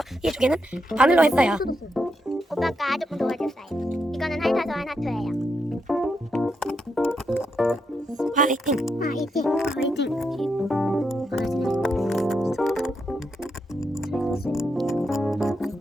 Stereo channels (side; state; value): both; normal; correlation 0.82